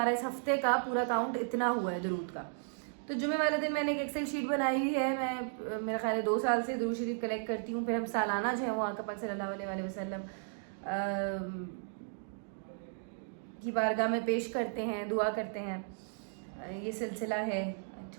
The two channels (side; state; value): left; silent; digital silence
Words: इस हफ्ते का पूरा काउंट इतना हुआ है दुरूद का। तो जुमे वाले दिन मैंने एक एक्सेल शीट बनाई हुई है। मैं मेरा ख्याल है 2 साल से दुरूद शरीफ कलेक्ट करती हूँ। फिर हम सालाना जो है वो आका पाक सल्लल्लाहु अलैहि वसल्लम की बारगाह में पेश करते हैं, दुआ करते हैं। ये सिलसिला है,